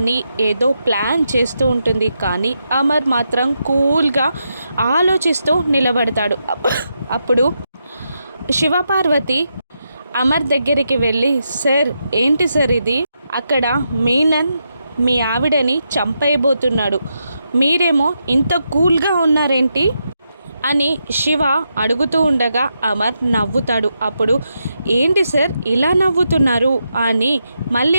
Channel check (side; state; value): both; inverted; correlation -0.84